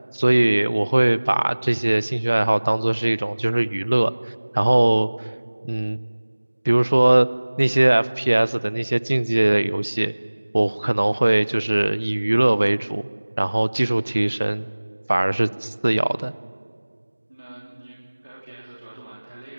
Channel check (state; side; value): inverted; both; correlation -1.00